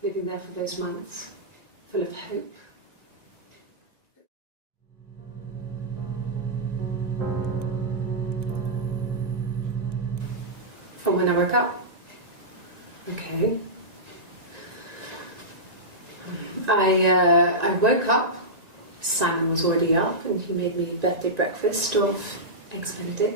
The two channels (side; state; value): left; late; 1.9 ms